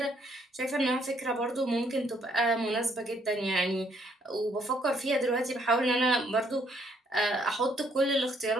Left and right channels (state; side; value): normal; both; correlation 0.68